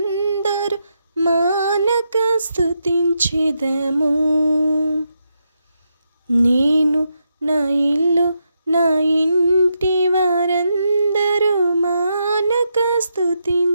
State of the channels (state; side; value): inverted; both; correlation -0.83